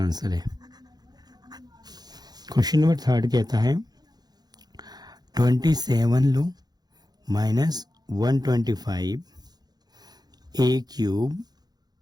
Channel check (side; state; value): left; late; 0.19 ms